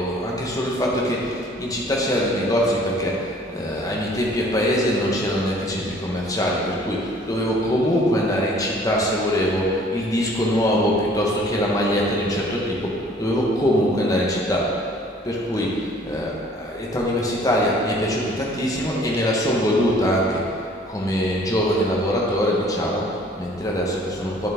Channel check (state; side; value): normal; both; correlation 0.54